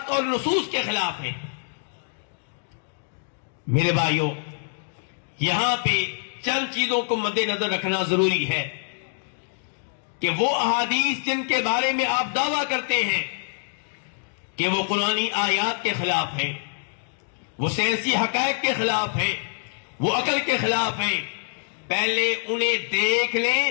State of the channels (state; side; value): silent; right; digital silence